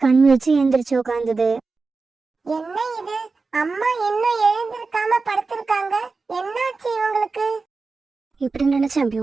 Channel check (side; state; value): left; quieter; 4.1 dB